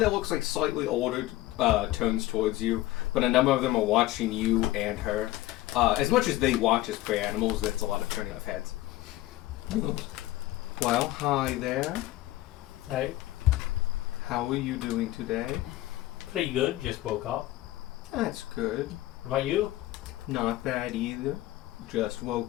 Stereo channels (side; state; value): right; quieter; 16.6 dB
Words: looks like slightly older turns towards you, but a number of them are watching you and her. As much as they watch as prey animals, that's a lot of turning off heads. Well, hi there. Hey, How are you doing today? pretty good. Just woke up. That's good. What about you? Not bad either. Just